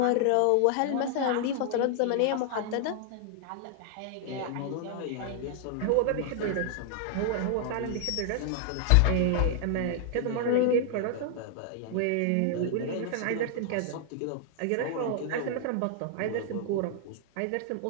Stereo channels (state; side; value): different; both; correlation -0.01